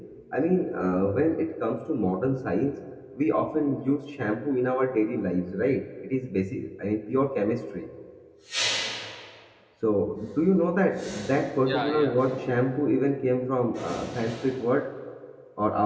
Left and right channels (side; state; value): both; identical; correlation 1.00